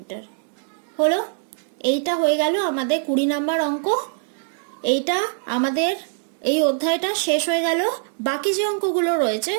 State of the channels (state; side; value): silent; left; digital silence